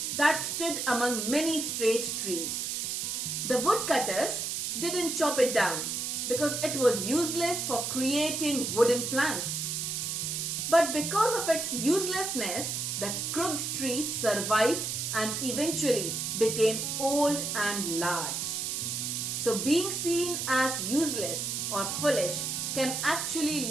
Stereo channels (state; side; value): noise; right; hiss, 2 dB below the sound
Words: that stood among many straight trees. The woodcutters didn't chop it down because it was useless for creating wooden planks. But because of its uselessness, the crooked tree survived and eventually became old and large. So being seen as useless or foolish can actually